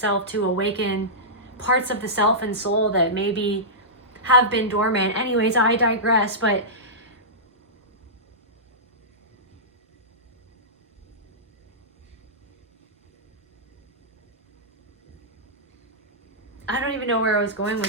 to awaken parts of the self and soul that maybe have been dormant. Anyways, I digress, but I don't even know where I was going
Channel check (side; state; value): both; normal; correlation -0.15